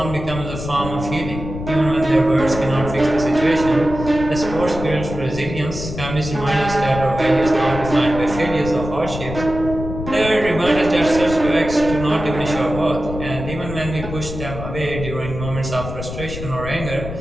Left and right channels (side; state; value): left; noise; rumble, 8 dB below the sound